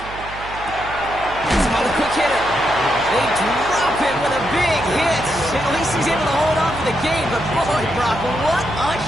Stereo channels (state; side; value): noise; right; hum, 15 dB below the sound